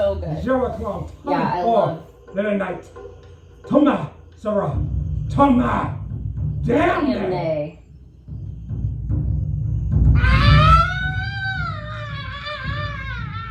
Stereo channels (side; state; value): both; identical; correlation 1.00